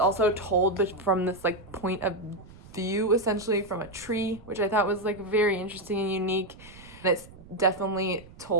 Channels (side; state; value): right; noise; rumble, 20 dB below the sound